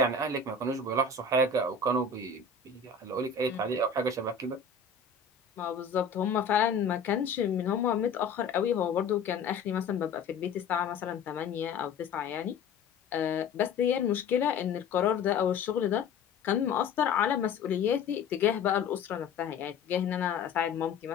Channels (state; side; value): quieter; right; 5.0 dB